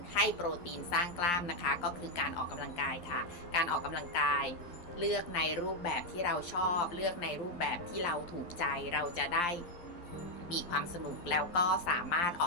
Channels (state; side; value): late; right; 11 ms